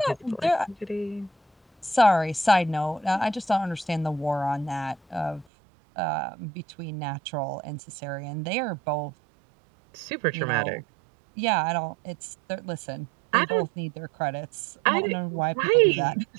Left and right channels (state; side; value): drops out; left; at 5.5 s